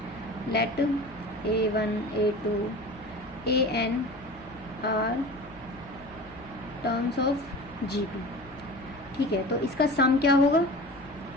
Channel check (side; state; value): left; noise; hum, 22 dB below the sound